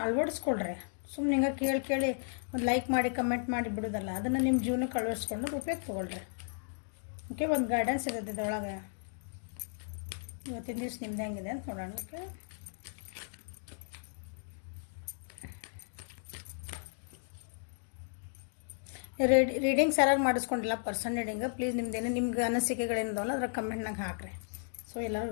ಅಳವಡಿಸ್ಕೊಳ್ರಿ. ಸುಮ್ಮನೆ ಹಿಂಗೆ ಕೇಳಿ ಒಂದು ಲೈಕ್ ಮಾಡಿ ಕಮೆಂಟ್ ಮಾಡಿ ಬಿಡೋದಲ್ಲ, ಅದನ್ನು ನಿಮ್ಮ ಜೀವನಕ್ಕೆ ಅಳವಡಿಸ್ಕೊಂಡು ಉಪಯೋಗ ತೊಗೊಳ್ರಿ. ಓಕೆ, ಒಂದು ಗೈಡೆನ್ಸ್ ಇರುತ್ತೆ ಇದರೊಳಗೆ. ಇವತ್ತಿನ ದಿವಸ ನಿಮ್ದು ಹೆಂಗಿದೆ ಅಂತ ನೋಡೋಣ. ಓಕೆ, ರೀಡಿಂಗ್ಸ್ ಯಾರು ಮಾಡಿಸ್ಕೊಂಡಿಲ್ಲ ಪರ್ಸನ್ ರೀಡಿಂಗ್, ಪ್ಲೀಸ್ ನಿಮ್ದೇನು ನಿಮ್ಗೆ ಅನಿಸಿಕೆಗಳೇನಿದಾವಲ್ಲ ಅದ್ರ ಕಮೆಂಟ್ನಾಗ ಹಾಕ್ರಿ. ಸೊ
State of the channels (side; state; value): right; silent; digital silence